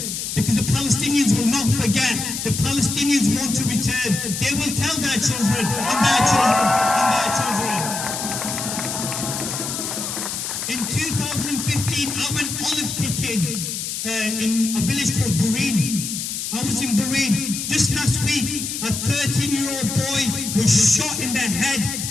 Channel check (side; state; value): left; noise; hiss, 4 dB below the sound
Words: Because the Palestinians will not forget. The Palestinians want to return. They will tell their children and their children and their children. In 2015, I went olive picking in a village called Bureen. I was in Bureen. Just last week, a 13-year-old boy was shot in the head